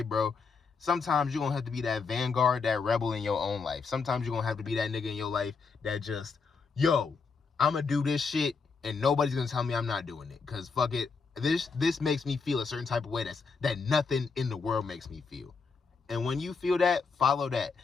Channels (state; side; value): quieter; right; 5.0 dB